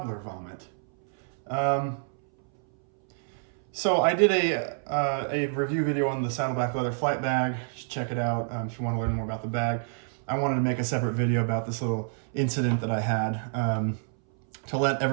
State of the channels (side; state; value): left; silent; 60 dB below the other